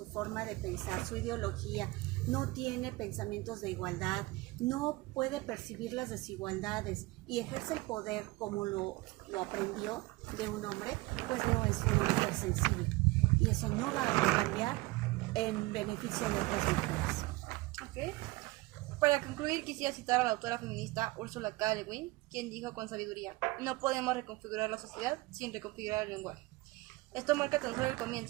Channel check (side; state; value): left; quieter; 21.6 dB